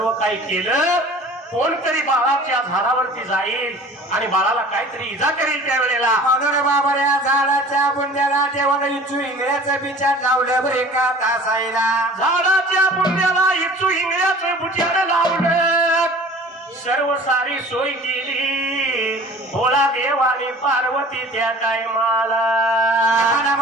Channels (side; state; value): both; normal; correlation 0.44